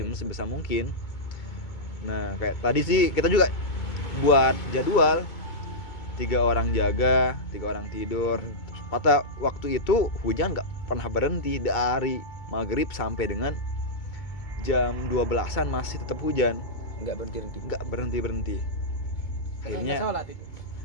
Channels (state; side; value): late; right; 2.2 ms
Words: sebisa mungkin. Nah kayak tadi sih kita juga buat jadwal 3 orang jaga, 3 orang tidur. Pada waktu itu hujan nggak pernah berhenti dari maghrib sampai dengan jam 12-an masih tetap hujan, nggak berhenti. Akhirnya sholat itu.